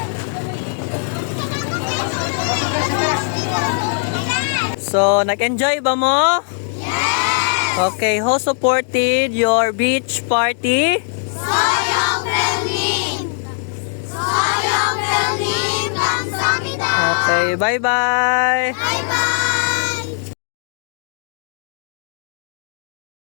So, nag-enjoy ba mo? Yes! Okay, who supported your beach party? Soyoung Pilnim! Soyoung Pilnim! 감사합니다! Okay, bye-bye! Bye-bye!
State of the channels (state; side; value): silent; right; digital silence